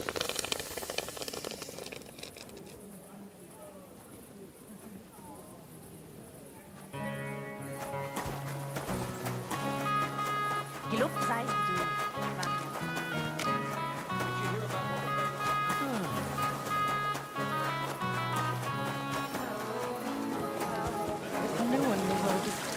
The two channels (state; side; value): identical; both; correlation 1.00